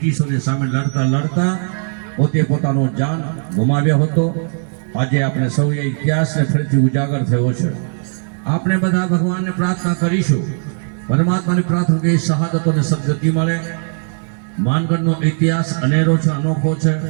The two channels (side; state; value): left; silent; digital silence